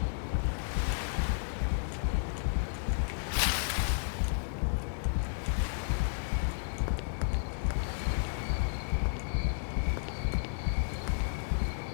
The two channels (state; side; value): silent; right; 56 dB below the other